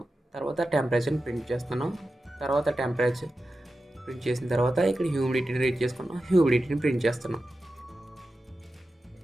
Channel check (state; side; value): normal; both; correlation 0.92